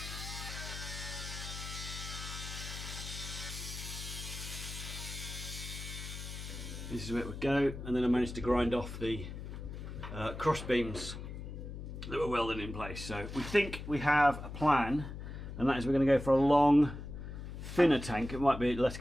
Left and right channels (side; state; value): left; noise; hum, 9 dB below the sound